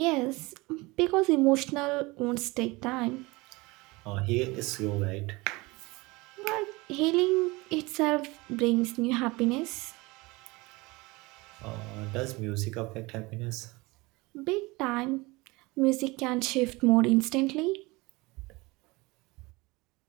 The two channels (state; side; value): quieter; left; 23.4 dB